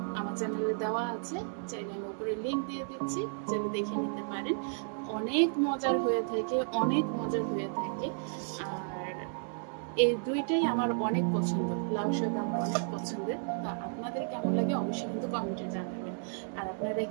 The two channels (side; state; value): left; silent; 56 dB below the other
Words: আমার চ্যানেলে দেওয়া আছে, চাইলে আমি উপরে লিংক দিয়ে দিচ্ছি, চাইলে দেখে নিতে পারেন। অনেক মজার হয়ে থাকে, অনেক মজার হয়ে থাকে। আর এই দুইটাই আমার অনেক পছন্দ, লাউ শাক আমার অনেক পছন্দের। তো আপনাদের কেমন লাগে অবশ্যই কিন্তু কমেন্টে জানাবেন। আর আপনারা